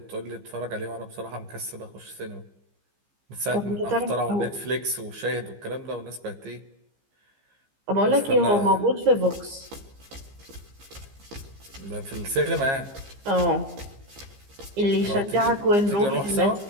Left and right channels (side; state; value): left; late; 15 ms